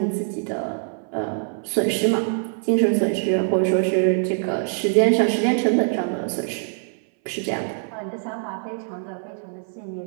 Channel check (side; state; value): left; silent; 58 dB below the other